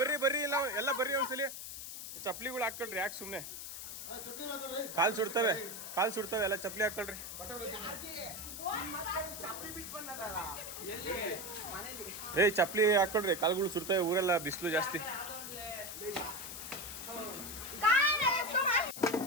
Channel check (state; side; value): noise; left; hiss, 8 dB below the sound